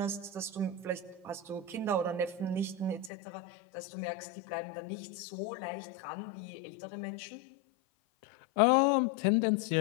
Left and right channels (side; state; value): right; drops out; at 3.1 s